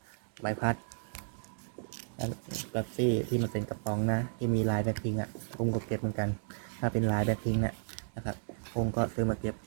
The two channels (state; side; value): silent; left; digital silence